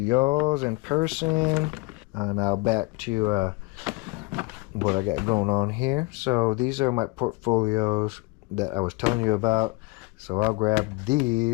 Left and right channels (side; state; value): right; quieter; 24.7 dB